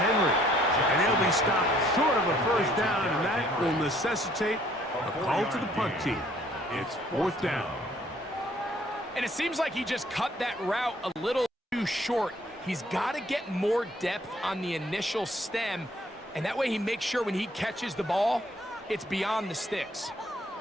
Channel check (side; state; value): both; normal; correlation 0.62